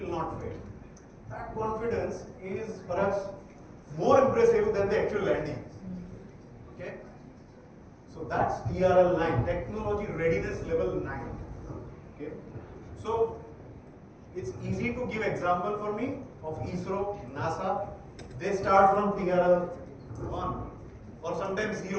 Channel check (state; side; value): identical; both; correlation 1.00